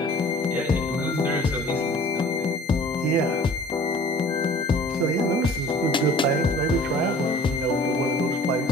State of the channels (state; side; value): normal; both; correlation 0.48